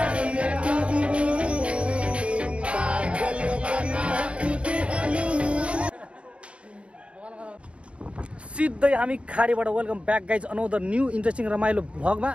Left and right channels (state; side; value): late; left; 0.060 ms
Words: सिधै हामी खाडीबाट welcome back guys another new interesting रमाइलो भ्लगमा